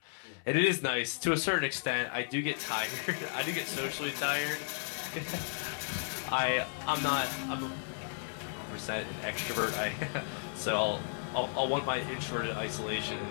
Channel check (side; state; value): right; silent; 55 dB below the other